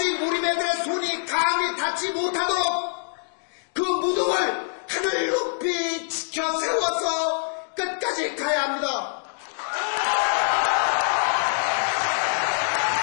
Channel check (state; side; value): silent; right; digital silence